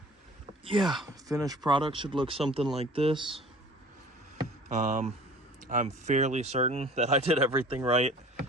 yeah, finished product should look something like this. I'm fairly certain that I did everything right.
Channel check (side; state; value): both; normal; correlation 0.45